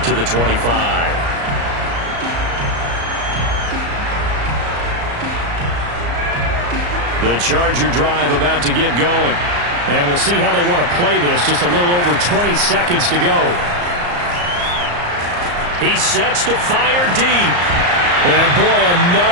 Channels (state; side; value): late; left; 34 ms